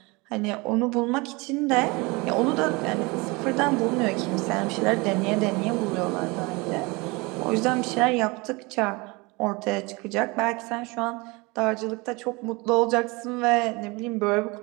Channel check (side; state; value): left; quieter; 25.7 dB